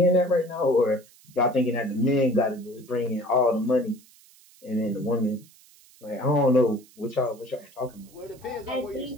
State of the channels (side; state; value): right; noise; hiss, 26 dB below the sound